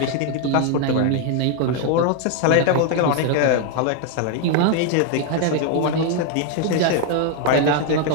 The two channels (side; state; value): both; different; correlation 0.00